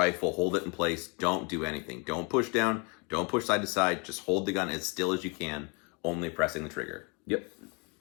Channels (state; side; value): quieter; right; 32.7 dB